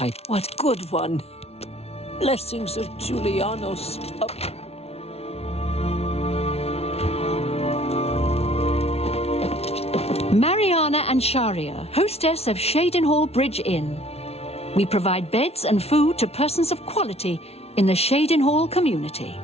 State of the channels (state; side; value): late; right; 0.30 ms